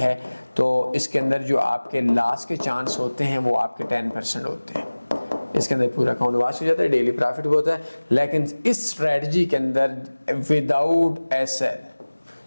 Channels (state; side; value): inverted; both; correlation -1.00